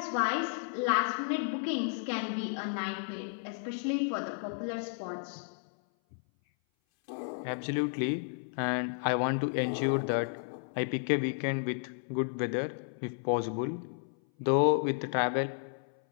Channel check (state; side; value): silent; right; 56 dB below the other